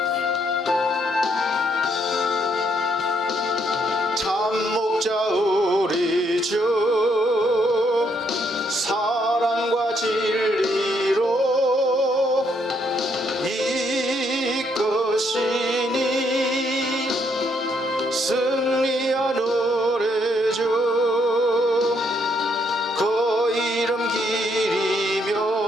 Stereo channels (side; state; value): both; normal; correlation 0.72